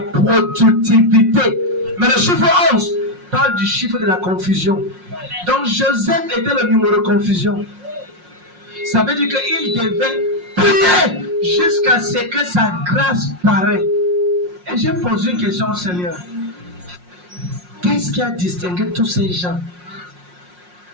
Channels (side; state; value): left; late; 5.6 ms